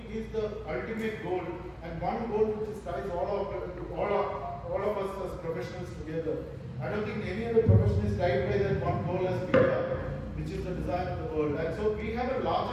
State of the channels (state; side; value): identical; both; correlation 1.00